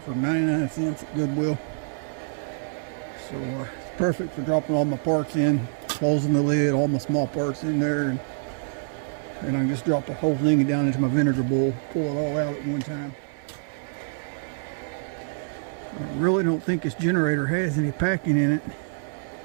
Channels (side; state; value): left; silent; 59 dB below the other